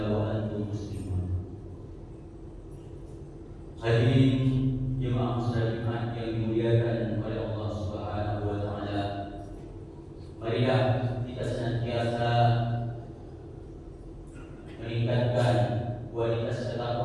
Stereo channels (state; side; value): identical; both; correlation 1.00